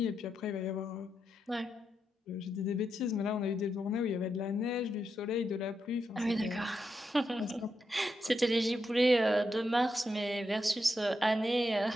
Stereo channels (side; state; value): both; normal; correlation 0.84